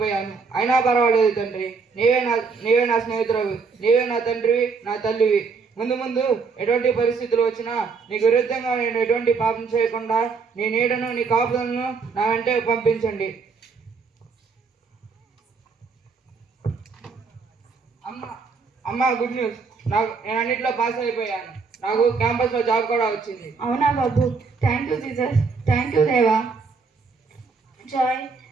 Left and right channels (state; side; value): quieter; left; 4.9 dB